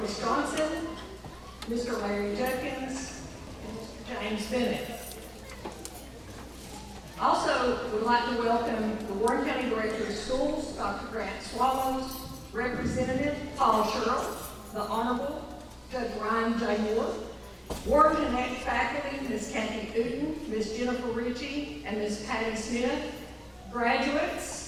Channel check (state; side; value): identical; both; correlation 1.00